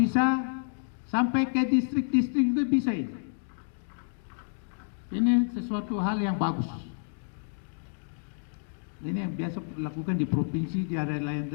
sampai ke distrik-distrik itu bisa ini. Ini sesuatu hal yang bagus. Ini yang biasa dilakukan di provinsi, di daerah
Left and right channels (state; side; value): silent; right; digital silence